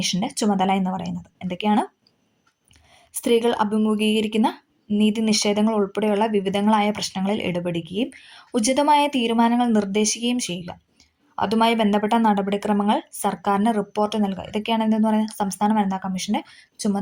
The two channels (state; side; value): identical; both; correlation 1.00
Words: ചുമതല എന്ന് പറയുന്നത്. എന്തൊക്കെയാണ്? സ്ത്രീകൾ അഭിമുഖീകരിക്കുന്ന നീതി നിഷേധങ്ങൾ ഉൾപ്പെടെയുള്ള വിവിധങ്ങളായ പ്രശ്നങ്ങളിൽ ഇടപെടുകയും ഉചിതമായ തീരുമാനങ്ങൾ നിർദ്ദേശിക്കുകയും ചെയ്യുക, അതുമായി ബന്ധപ്പെട്ട നടപടിക്രമങ്ങൾ സർക്കാരിന് റിപ്പോർട്ട് നൽകുക. ഇതൊക്കെയാണ് എന്തെന്ന് പറയുന്നത് സംസ്ഥാന വനിതാ കമ്മീഷന്റെ